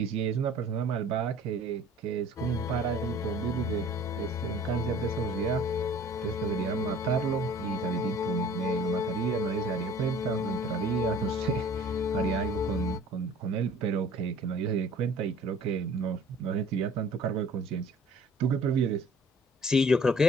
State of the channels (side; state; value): both; normal; correlation 0.50